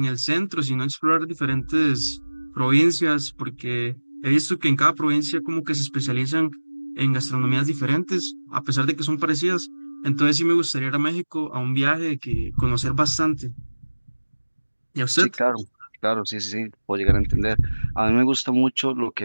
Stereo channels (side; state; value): both; inverted; correlation -1.00